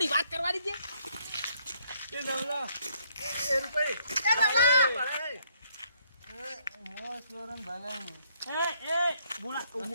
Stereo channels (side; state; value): both; inverted; correlation -0.68